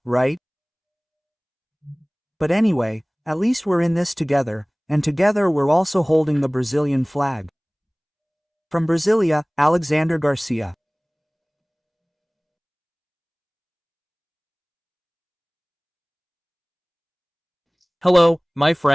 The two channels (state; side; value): identical; both; correlation 1.00